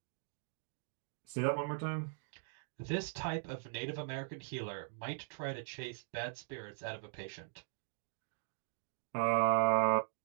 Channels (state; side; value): silent; left; digital silence